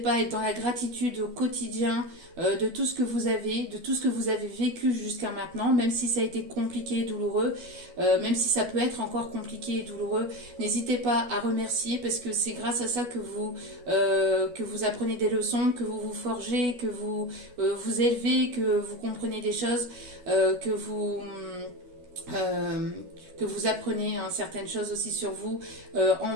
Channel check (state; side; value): late; left; 12 ms